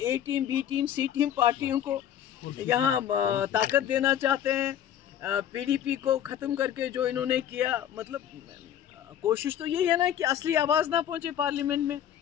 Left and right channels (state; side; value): quieter; right; 10.3 dB